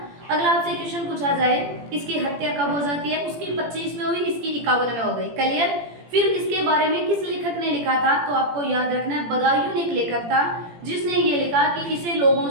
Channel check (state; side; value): late; left; 17 ms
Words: अगला आपसे क्वेश्चन पूछा जाए इसकी हत्या कब हो जाती है, उसकी 25 में हुई, इसकी 51 में हो गई। क्लियर। फिर इसके बारे में किस लेखक ने लिखा था, तो आपको याद रखना है बदायूं एक लेखक था जिसने ये लिखा कि इसे लोगों